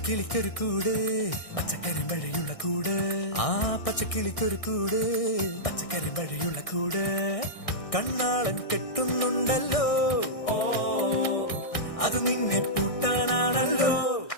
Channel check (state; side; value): late; right; 1.6 ms